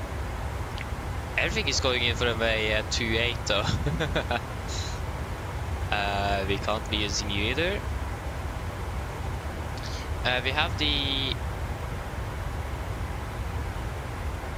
Everything is going in for runway 28 though. We can't be using you either. We have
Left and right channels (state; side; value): identical; both; correlation 1.00